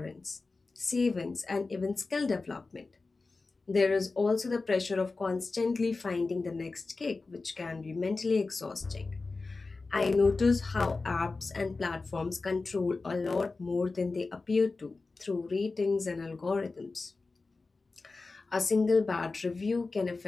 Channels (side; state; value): right; quieter; 3.8 dB